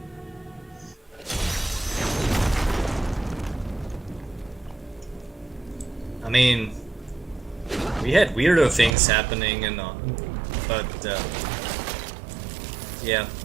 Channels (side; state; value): left; drops out; at 9.0 s